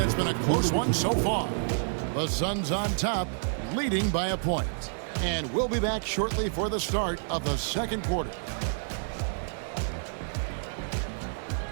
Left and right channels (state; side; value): silent; left; digital silence